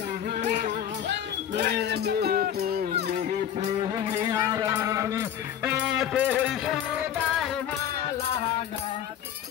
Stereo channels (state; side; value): quieter; right; 9.9 dB